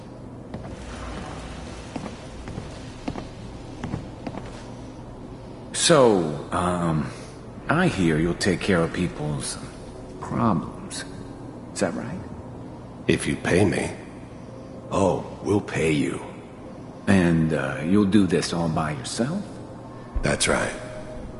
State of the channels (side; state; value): both; identical; correlation 1.00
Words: So, I hear you'll take care of people's problems. Is that right? If you pay me. Oh, we'll pay you. And, you'll do this all by yourself? That's right.